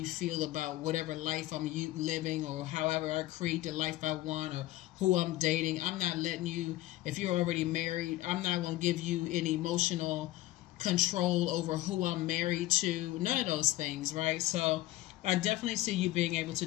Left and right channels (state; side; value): quieter; right; 16.5 dB